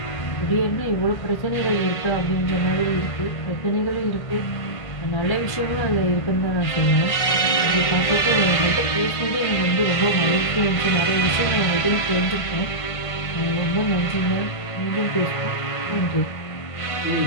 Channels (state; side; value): late; right; 1.5 ms